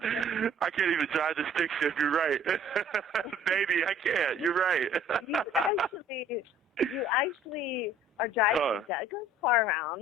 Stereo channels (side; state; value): both; normal; correlation 0.54